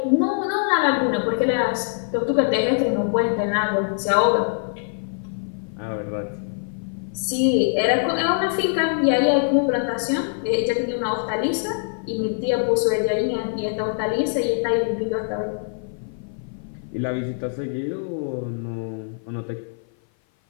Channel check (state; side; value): silent; right; 56 dB below the other